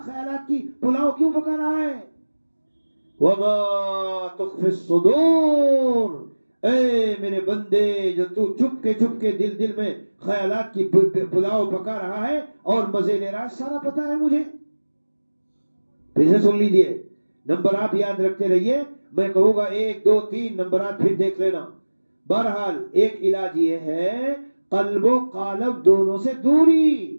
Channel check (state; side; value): inverted; both; correlation -1.00